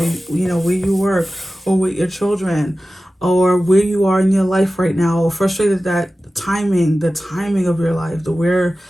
you work, or with your children, or where you are in your life right now, or frustrated that the timing of your life, the where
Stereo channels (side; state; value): both; normal; correlation 0.95